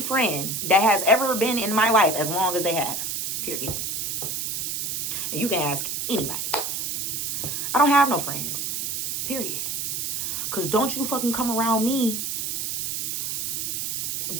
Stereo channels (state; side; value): noise; right; hiss, 2 dB below the sound